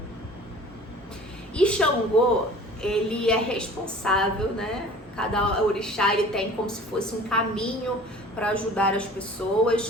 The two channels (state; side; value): normal; both; correlation 0.45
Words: E Xangô, ele é responsável, né? Cada orixá ele tem como se fosse um caminho para ajudar as pessoas,